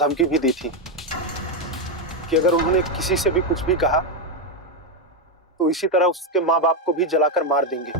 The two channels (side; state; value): both; normal; correlation 0.06